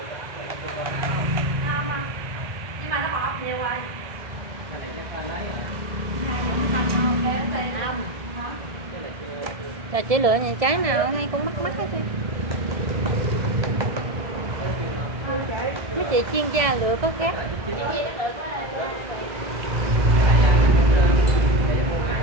chưa có không? Ngon không? Nhưng mà nó bọt nhiều rồi. Cái này chắc là lấy. Hai giờ nó thành không? Để nó tê Không. hả? Cái này chưa. Là chỉ lựa những trái nào hay cũng mắc mắc hết trơn. Mấy chị chuyên gia lựa có khác. Chị nó được quá.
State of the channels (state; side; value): late; left; 1.7 ms